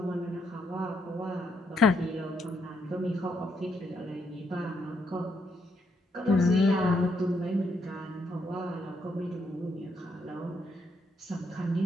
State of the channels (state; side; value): normal; both; correlation 0.76